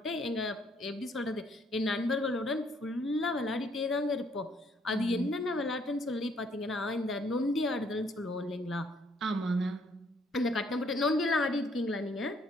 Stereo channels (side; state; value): both; normal; correlation 0.66